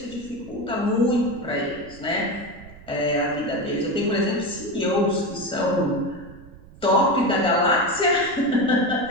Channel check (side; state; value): right; noise; rumble, 20 dB below the sound